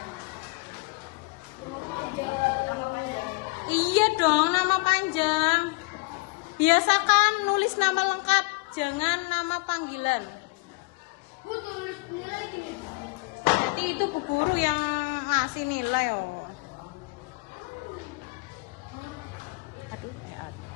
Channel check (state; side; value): quieter; right; 28.5 dB